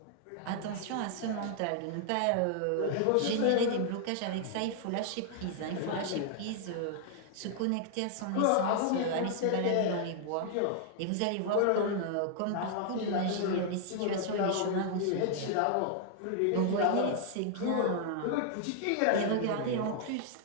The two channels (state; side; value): different; both; correlation -0.01